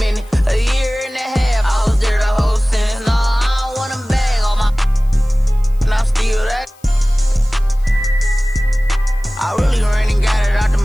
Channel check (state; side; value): noise; left; hiss, 30 dB below the sound